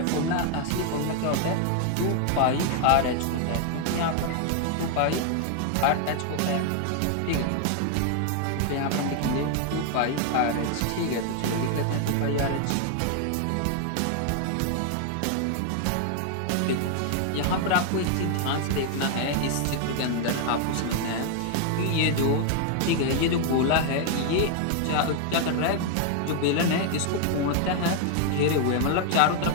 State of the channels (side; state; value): both; different; correlation 0.00